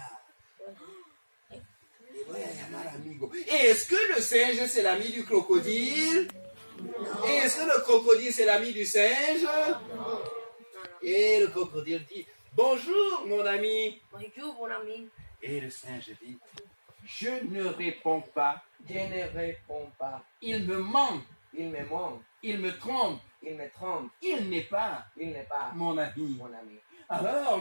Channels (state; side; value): inverted; both; correlation -1.00